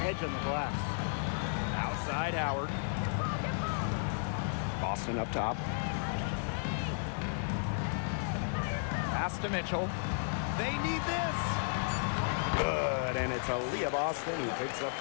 edge on the glass. Outside Howard. Boston up top. Pass to Mitchell. They need this. Good, and it's Aaliyah Boston who picks up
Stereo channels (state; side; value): silent; right; digital silence